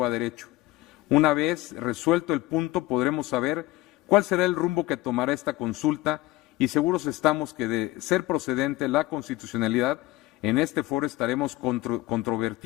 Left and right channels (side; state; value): right; quieter; 17.7 dB